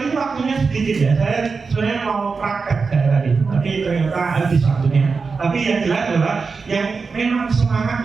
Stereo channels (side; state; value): left; quieter; 4.8 dB